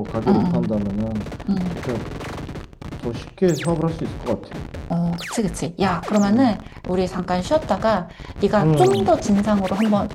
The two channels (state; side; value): identical; both; correlation 1.00